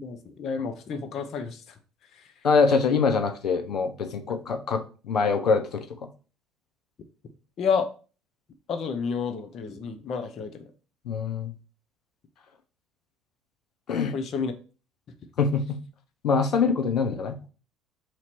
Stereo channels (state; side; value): quieter; right; 4.8 dB